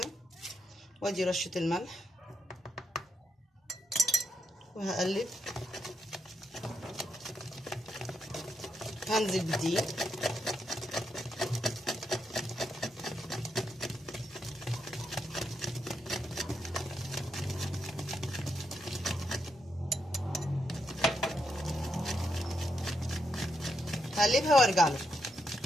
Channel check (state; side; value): normal; both; correlation 0.81